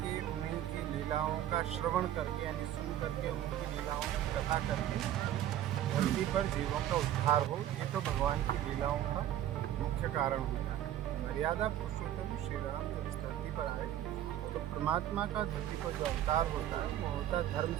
उनकी लीलाओं का श्रवण करके यानी सुन करके, उनकी लीलाओं की कथा करके धरती पर जीवों का उद्धार हो। ये तो भगवान की लीलाओं का मुख्य कारण होता है। मर्यादा पुरुषोत्तम श्री राम जब इस धरती पर आए तो परमात्मा का धरती पर जो अवतार होता है वो होता है धर्म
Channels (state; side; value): quieter; left; 11.9 dB